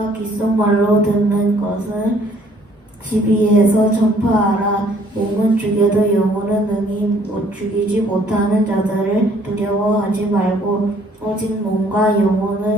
귓속말로 듣는 것을 집 위에서 전파하라. 몸은 죽여도 영혼은 능히 죽이지 못하는 자들을 두려워하지 말고 오직 몸과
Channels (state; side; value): normal; both; correlation 0.61